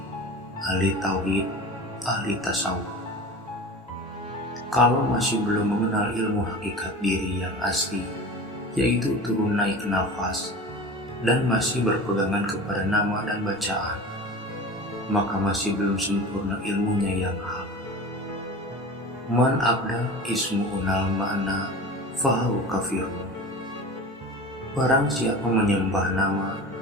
ahli tauhid, ahli tasawuf. Kalau masih belum mengenal ilmu hakikat diri yang asli, yaitu turun naik nafas, dan masih berpegangan kepada nama dan bacaan, maka masih belum sempurna ilmunya yang hak. Man abda ismu unal ma'na fahu kafirun. Barang siapa menyembah nama,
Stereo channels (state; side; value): normal; both; correlation 0.34